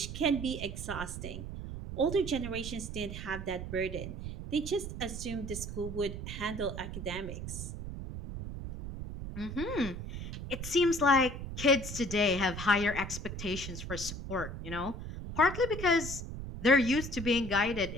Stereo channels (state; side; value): noise; right; rumble, 7 dB below the sound